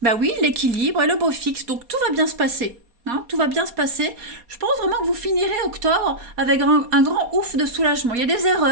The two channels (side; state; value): left; late; 4.2 ms